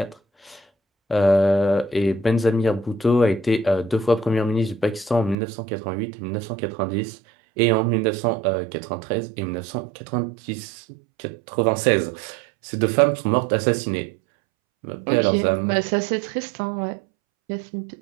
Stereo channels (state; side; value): drops out; left; at 5.4 s